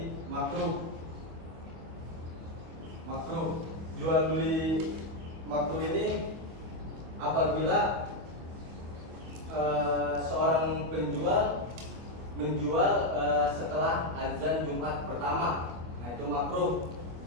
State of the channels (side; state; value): left; late; 25 ms